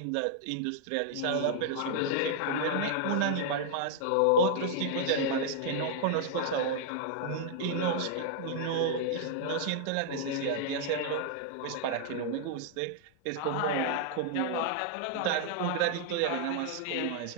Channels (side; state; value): both; different; correlation -0.01